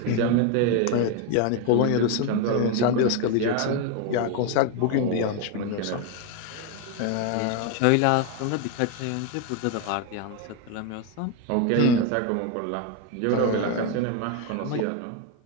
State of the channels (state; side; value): different; both; correlation 0.01